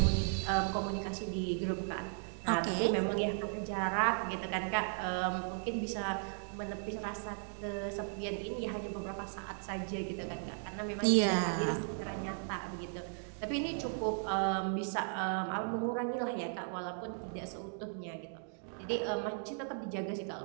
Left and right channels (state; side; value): silent; left; 54 dB below the other